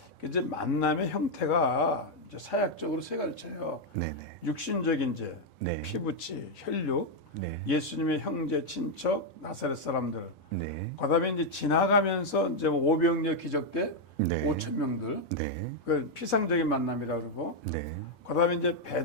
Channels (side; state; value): both; normal; correlation 0.00